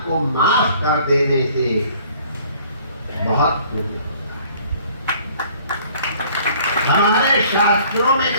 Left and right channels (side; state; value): both; inverted; correlation -0.56